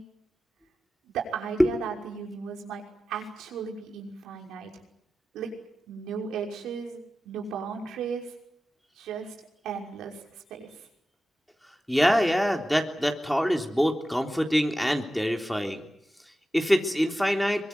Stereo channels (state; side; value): normal; both; correlation 0.93